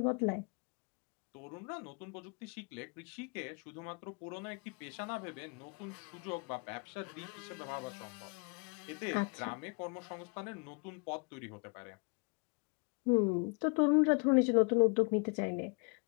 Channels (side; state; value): right; quieter; 33.5 dB